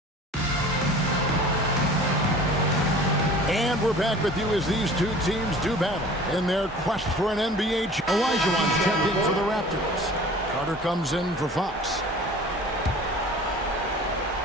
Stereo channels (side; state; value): both; normal; correlation 0.44